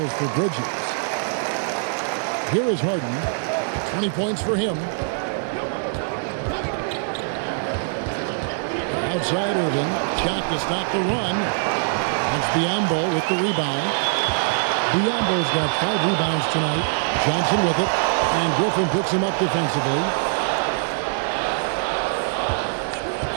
for Bridges. Here is Harden. 20 points for him. Outside Irving. Shot to stop the run. It's Biyombo with the rebound. Biyombo's got 5 rebounds tonight. Johnson with it. And Griffin picks him up defensively.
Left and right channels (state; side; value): silent; left; digital silence